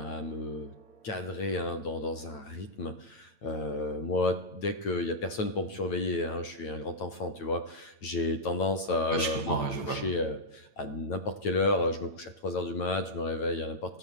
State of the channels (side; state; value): right; late; 9.0 ms